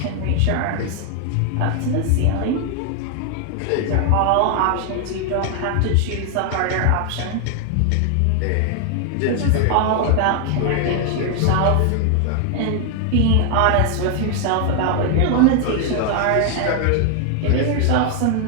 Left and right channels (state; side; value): different; both; correlation 0.00